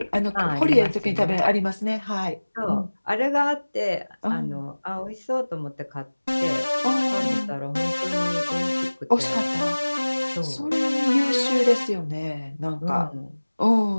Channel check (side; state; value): both; inverted; correlation -1.00